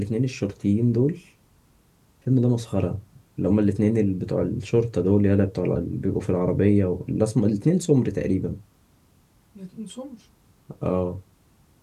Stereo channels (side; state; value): both; identical; correlation 1.00